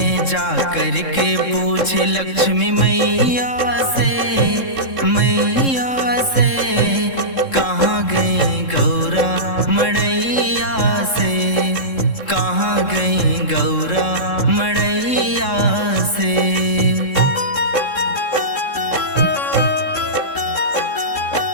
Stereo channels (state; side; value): late; right; 3.7 ms